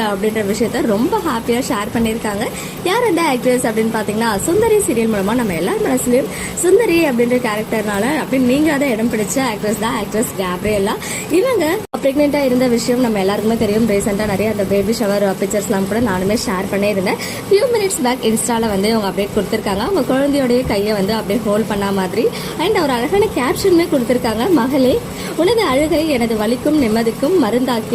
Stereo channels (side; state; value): both; identical; correlation 1.00